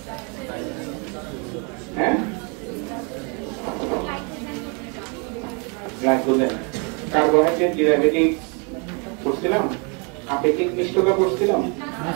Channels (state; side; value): quieter; left; 34.4 dB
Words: হ্যাঁ, গ্লাইকোজেন, কার্বোহাইড্রেট ডেরিভেটিভ করছিলাম, আপেক্ষিক মিষ্টতা করছিলাম,